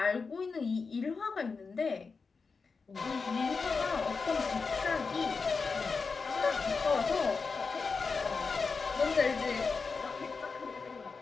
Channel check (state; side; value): quieter; right; 4.7 dB